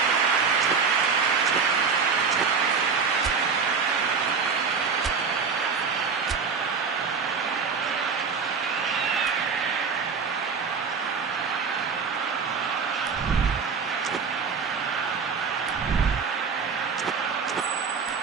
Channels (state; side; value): quieter; left; 5.6 dB